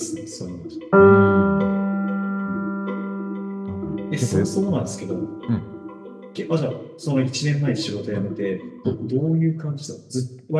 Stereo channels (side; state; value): both; identical; correlation 1.00